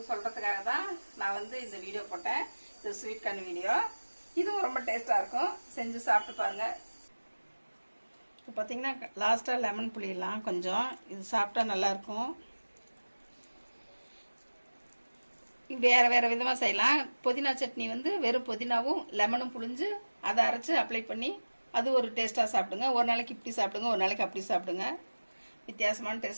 சொல்கிறதுக்காக தான் நான் வந்து இந்த வீடியோ போட்டேன். இது ஸ்வீட் கார்ன் வீடியோ. இதுவும் ரொம்ப டேஸ்ட்டாக இருக்கும், செஞ்சு சாப்பிட்டு பாருங்கள். இப்போ பார்த்தீங்கன்னா லாஸ்ட்டாக லெமன் புளியெல்லாம் கொஞ்சம் இது சாப்பிட்டா நல்லாயிருக்கும். வேறு விதமாக செய்யலாம். புதினா சட்னி வந்து வெறும் புதினாவும் லெமனும் புளிஞ்சு அதை அரைச்சி அப்ளை பண்ணி அது ஒரு டேஸ்ட்டாக சாப்பிடுங்க. ஒரு நாளைக்கு இப்படி சாப்பிடுங்க, ஒரு நாளைக்கு அப்படி சாப்பிடுங்க. வித்தியாசமான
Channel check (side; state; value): both; inverted; correlation -1.00